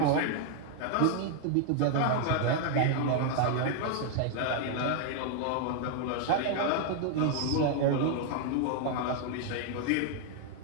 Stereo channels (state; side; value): different; both; correlation 0.00